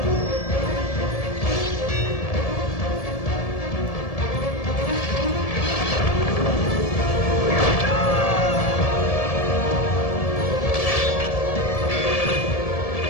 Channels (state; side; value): late; right; 1.7 ms